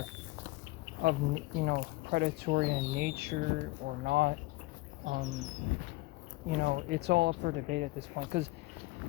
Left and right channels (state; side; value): quieter; right; 20.5 dB